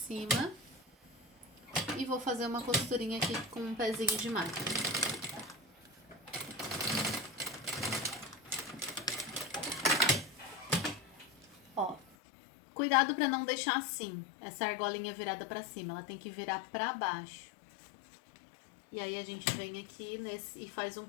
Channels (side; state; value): right; drops out; at 12.2 s